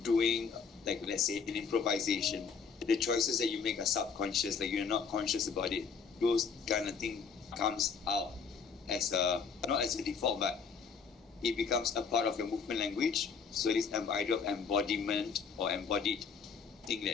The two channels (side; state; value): right; quieter; 5.7 dB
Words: doing, let's say, an improvisation, the choices that you make are subconscious, you're not conscious about it. Those kind of thing comes out as not as a default, but it becomes a part of your movement language. So this idea of embodiment or embodied thing,